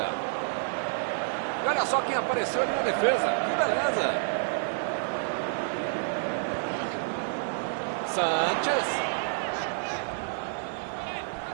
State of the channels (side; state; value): left; silent; 59 dB below the other